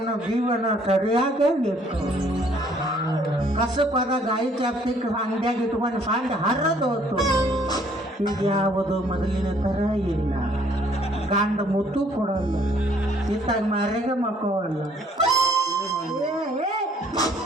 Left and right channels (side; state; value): both; normal; correlation 0.62